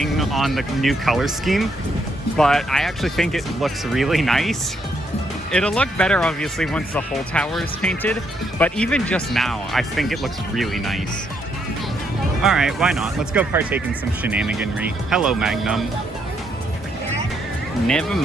on the new color scheme, but I actually think it looks really nice. It'll look better, obviously, once the whole tower is painted, but even just now, I think it looks really nice. Alright, why not? Let's go partake in some shenaniganry. Hello, Magnum. Never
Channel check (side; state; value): both; normal; correlation 0.75